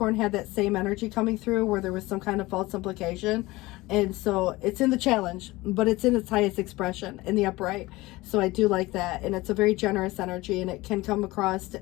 had that same energy coming through where there was some kind of false implication. And so it's in the challenge, but it's in its highest expression in the upright. So I do like that. And it's a very generous energy, and it can come across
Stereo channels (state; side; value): quieter; right; 20.2 dB